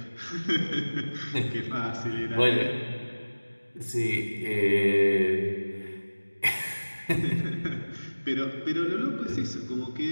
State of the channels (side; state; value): both; inverted; correlation -1.00